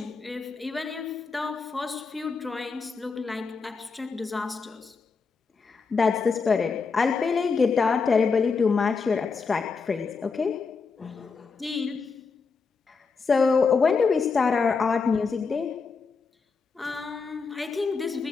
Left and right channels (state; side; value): quieter; right; 4.9 dB